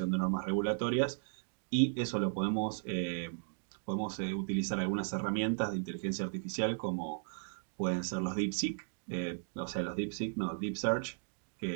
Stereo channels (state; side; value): silent; left; digital silence